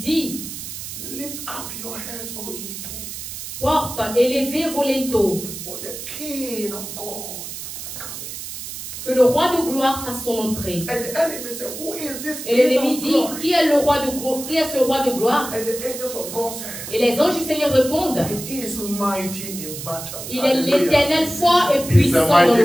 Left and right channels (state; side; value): noise; right; hiss, 9 dB below the sound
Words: lift up your heads, O ye gates, porte, élevez vos linteaux, for the King of God to come in. que le roi de gloire fasse son entrée. And the enemy said, who is this Et King l'ennemi of dit, glory? qui est le roi de gloire? Qui est ce roi de gloire? And the angels of God said, Et les anges du Seigneur répondent, he is mighty in battle. il est Hallelujah. l'Éternel fort et He's a puissant dans mighty